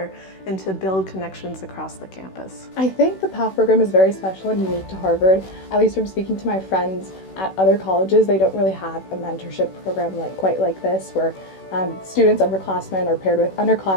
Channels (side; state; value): right; late; 16 ms